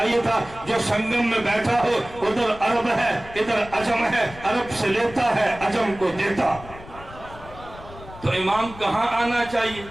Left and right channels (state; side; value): noise; left; rumble, 17 dB below the sound